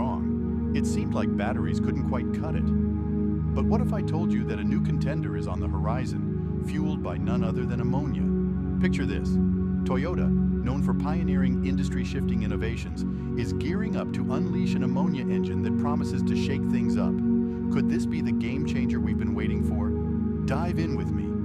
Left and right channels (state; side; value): identical; both; correlation 1.00